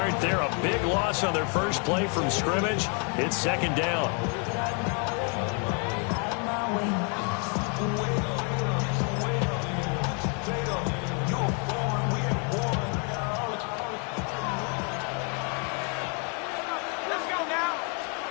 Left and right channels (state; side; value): quieter; right; 37.9 dB